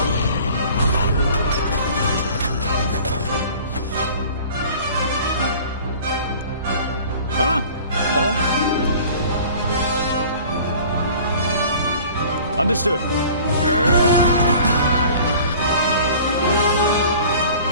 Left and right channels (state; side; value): inverted; both; correlation -0.46